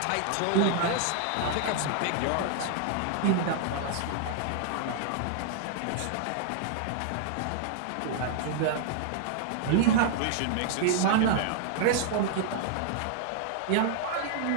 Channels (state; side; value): different; both; correlation -0.01